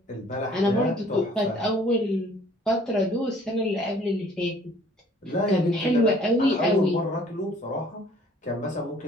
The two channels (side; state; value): both; normal; correlation 0.55